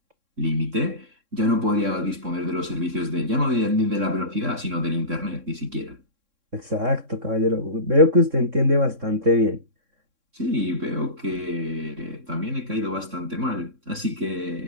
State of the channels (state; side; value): late; left; 3.6 ms